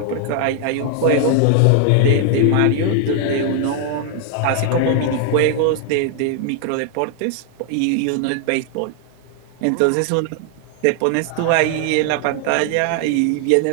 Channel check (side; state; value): both; different; correlation 0.00